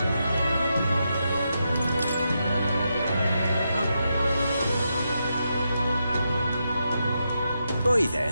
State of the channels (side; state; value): both; inverted; correlation -0.84